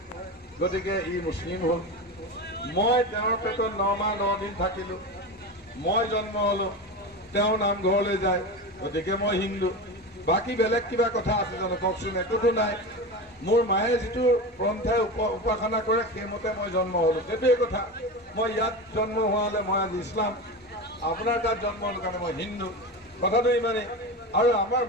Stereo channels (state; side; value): normal; both; correlation 0.24